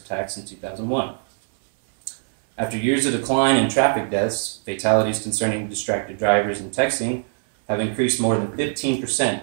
attacks in 2001. After years of decline in traffic deaths, fatalities concerning distracted drivers and texting have increased more than 15%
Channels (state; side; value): silent; left; 62 dB below the other